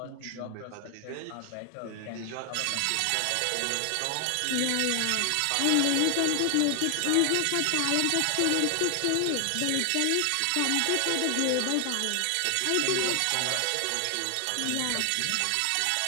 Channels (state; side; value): different; both; correlation 0.00